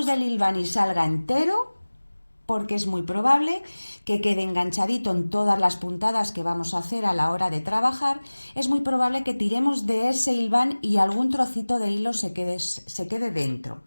del hilván y salga entero, porque es muy probable que quede enganchadito en todas las puntadas que vamos a hacer a la hora de trabajar, es muy probable que tiremos de ese hilván y algún trocito de hilo se quede dentro.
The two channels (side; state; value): both; inverted; correlation -1.00